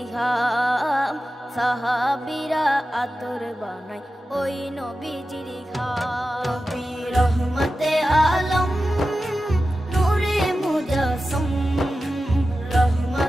ঘাম, সাহাবীরা আতর বানায় ওই নবীজির ঘাম। নবী রহমতে আলম নূরে মুজস্সম,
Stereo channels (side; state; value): both; normal; correlation 0.93